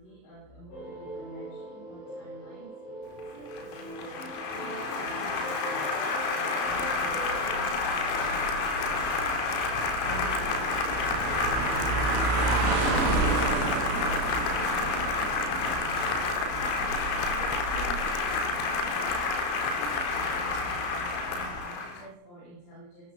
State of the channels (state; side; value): late; right; 34 ms